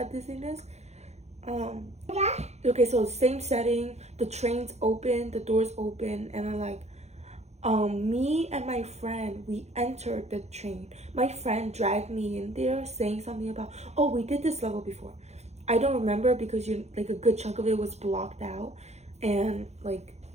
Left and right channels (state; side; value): late; left; 0.32 ms